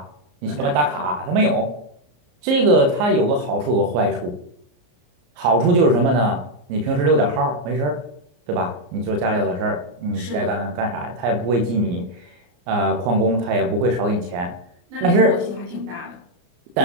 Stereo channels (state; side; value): late; left; 34 ms